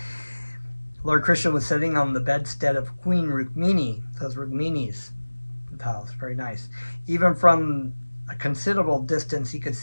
Lord Krishna was sitting on the bedstead of Queen Rukmini. Those Rukmini's palace, very nice. Even from a considerable distance, he could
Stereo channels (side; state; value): both; inverted; correlation -1.00